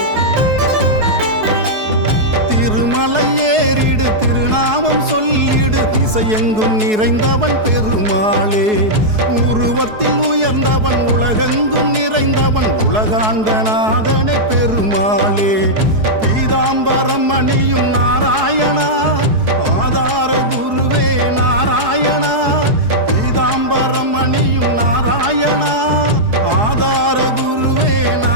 திருமலை ஏறிடு திருநாமம் சொல்லிடு திசையெங்கும் நிறைந்தவன் பெருமாளே. உருவத்தில் உயர்ந்தவன் உலகெங்கும் நிறைந்தவன் உலகாண்ட நாதனே பெருமாளே. பீதாம்பரம் அணியும் நாராயணா ஆதார குருவே நாராயணா. பீதாம்பரம் அணியும் நாராயணா ஆதார குருவே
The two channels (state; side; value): late; left; 4.7 ms